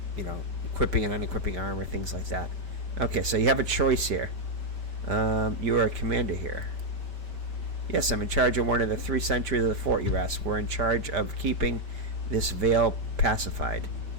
equipping and unequipping armor, things like that. Okay, so you have a choice here. You are a commander here. Yes, I'm in charge of one of the 3 sentries of the fort, you ask. We're in charge of keeping this vale pacified.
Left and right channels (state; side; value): late; left; 5.2 ms